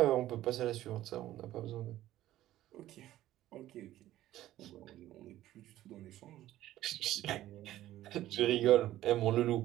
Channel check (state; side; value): quieter; left; 14.2 dB